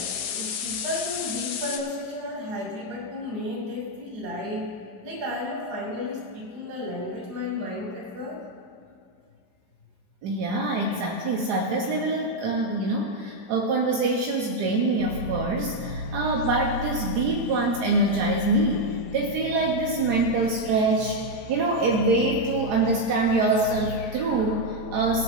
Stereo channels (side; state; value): left; late; 4.9 ms